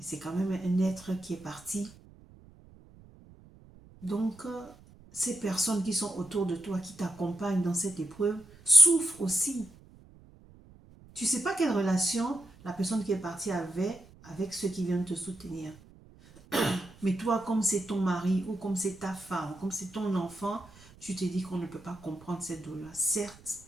c'est quand même un être qui est parti. Donc, ces personnes qui sont autour de toi, qui t'accompagnent dans cette épreuve, souffrent aussi. Tu ne sais pas quelle relation la personne qui est partie avait avec ceux qui viennent te soutenir. Mais toi, comme c'est ton mari, ou comme c'est ta femme, comme c'est ton enfant, tu te dis qu'on ne peut pas comprendre cette douleur.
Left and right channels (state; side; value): noise; right; rumble, 23 dB below the sound